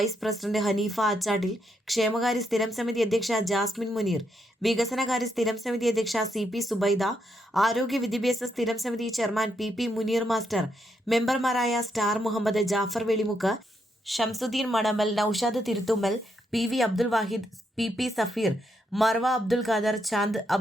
പ്രസിഡന്റ് ഹനീഫ ആച്ചാട്ടിൽ, ക്ഷേമകാര്യ സ്ഥിരം സമിതി അധ്യക്ഷ ജാസ്മിൻ മുനീർ, വികസനകാര്യ സ്ഥിരം സമിതി അധ്യക്ഷ CP സുബൈദ, ആരോഗ്യ വിദ്യാഭ്യാസ സ്ഥിരം സമിതി ചെയർമാൻ PP മുനീർ മാസ്റ്റർ, മെമ്പർമാരായ star Muhammad, Jafar Velimukku, Shamsuddin Manamal, Naushad Thiruthummal, PV Abdul Wahid, PP Safeer, Marva Abdul Khader, Chand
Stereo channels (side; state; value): both; normal; correlation 0.79